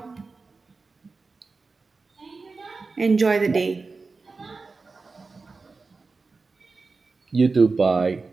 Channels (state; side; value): quieter; left; 4.1 dB